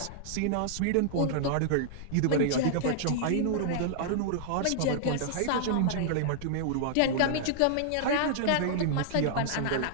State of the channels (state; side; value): different; both; correlation -0.01